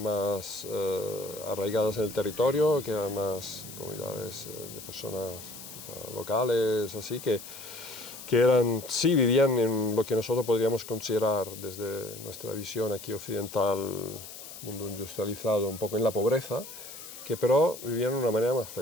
más arraigadas en el territorio, que eran más comunidades de personas quizá locales, así que sí vivían en lo que nosotros podríamos considerar desde nuestra visión aquí occidental, mundo industrializado, un poco en la pobreza, que pero vivían de una manera más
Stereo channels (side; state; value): left; noise; hiss, 13 dB below the sound